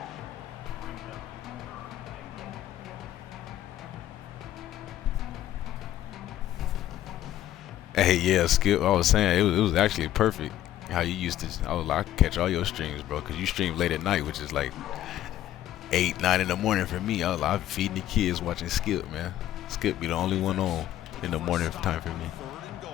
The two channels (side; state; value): right; quieter; 13.0 dB